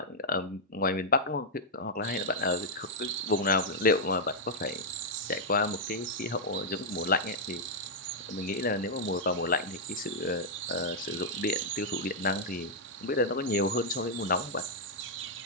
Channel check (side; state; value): both; normal; correlation -0.05